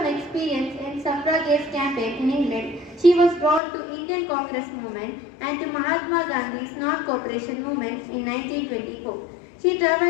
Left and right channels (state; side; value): drops out; right; at 3.6 s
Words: experience in suffragette campaign in England, she was drawn to Indian Congress movement and to Mahatma Gandhi's non-cooperation movement in 1924. She